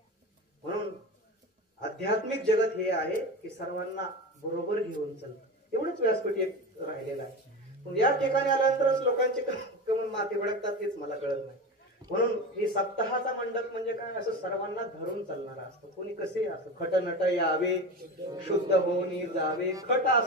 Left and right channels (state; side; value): normal; both; correlation 0.26